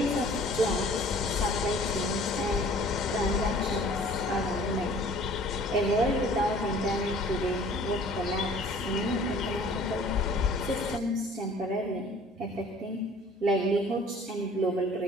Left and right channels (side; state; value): both; normal; correlation 0.51